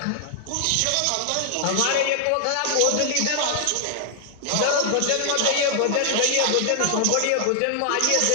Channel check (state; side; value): different; both; correlation 0.00